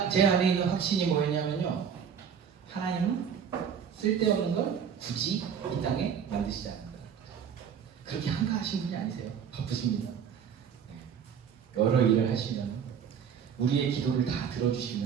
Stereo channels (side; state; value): left; quieter; 7.6 dB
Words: 제 안에 있는 확신이 뭐였냐면요, 하나님은 쓸데없는 걸 굳이 이 땅에 만드시지 않는다. 그렇게 한가하신 분이 아니세요. 바쁘십니다. 여러 일을 하시면, 우리의 기도를 다